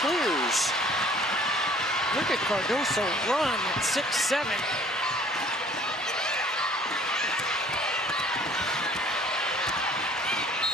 Look at Cardoso run at 6'7".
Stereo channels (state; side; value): normal; both; correlation 0.54